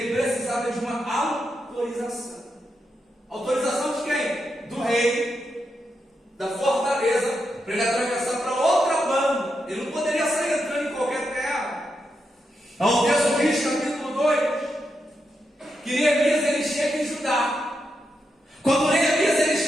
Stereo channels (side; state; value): both; normal; correlation 0.84